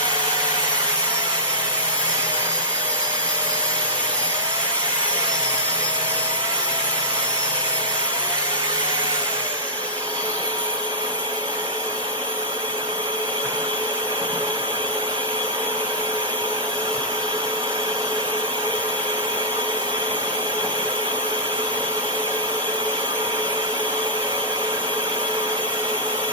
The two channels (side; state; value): both; normal; correlation -0.16